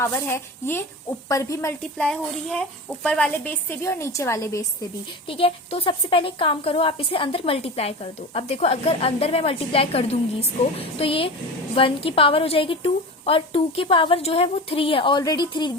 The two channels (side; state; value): both; normal; correlation 0.30